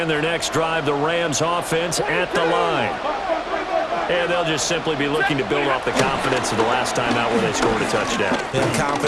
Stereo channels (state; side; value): identical; both; correlation 1.00